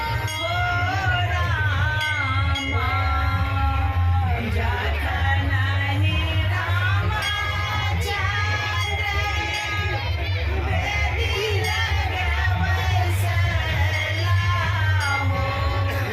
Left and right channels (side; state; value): both; identical; correlation 1.00